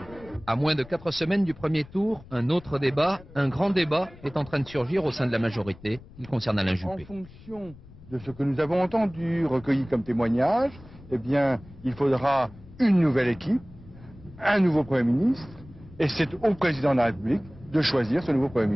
À moins de 4 semaines du premier tour, un autre débat, un grand débat, est en train de surgir au sein de la majorité. Il concerne Alain Juppé. En fonction de ce que nous avons entendu, recueilli comme témoignage, eh bien, il faudra une nouvelle équipe, un nouveau Premier ministre, et c'est au président de la République de choisir ce nouveau Premier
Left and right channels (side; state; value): left; noise; rumble, 20 dB below the sound